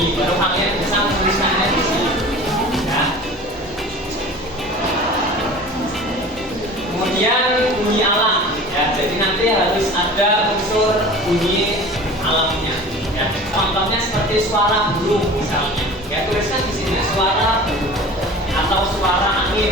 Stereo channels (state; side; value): normal; both; correlation 0.40